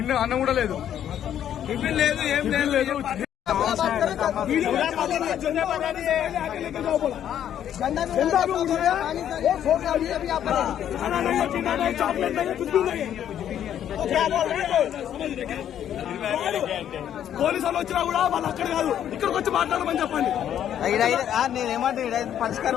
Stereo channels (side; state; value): right; quieter; 10.2 dB